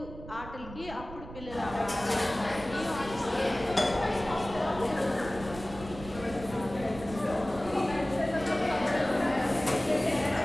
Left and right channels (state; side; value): noise; right; rumble, 14 dB below the sound